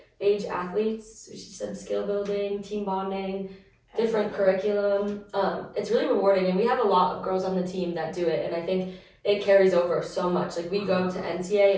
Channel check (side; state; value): both; identical; correlation 1.00